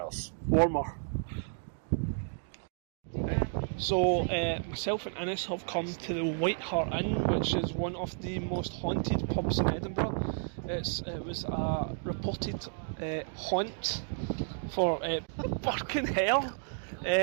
Warmer. So, myself and Innes have come to the White Hart Inn, which is one of the most haunted pubs in Edinburgh. It was a reported haunt for fucking hell.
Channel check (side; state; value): left; silent; digital silence